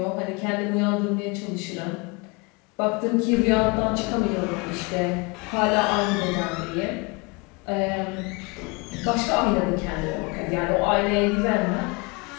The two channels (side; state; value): right; quieter; 28.3 dB